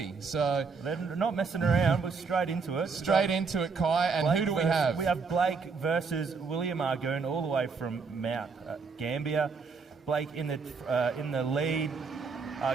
So they're not messing around. We're straight into it. Straight into it, Kai. And Blake who do we have? We have Blake versus William Argoon, all the way from Mount Gambier. Blake in the lead,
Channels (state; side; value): quieter; left; 4.9 dB